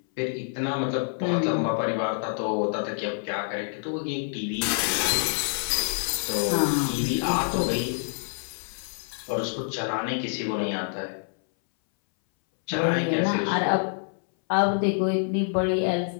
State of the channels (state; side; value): silent; right; 60 dB below the other